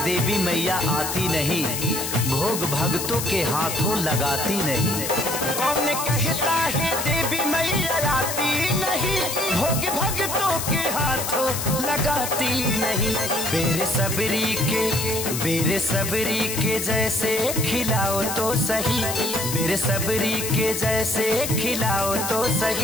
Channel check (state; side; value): noise; left; hiss, 4 dB below the sound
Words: देवी मैया आती नहीं, भोग भक्तों के हाथों लगाती नहीं। कौन कहता है देवी मैया आती नहीं, भोग भक्तों के हाथों लगाती नहीं। बेरे सबरी के जैसे खिलाओ तो सही, बेरे सबरी के जैसे खिलाओ तो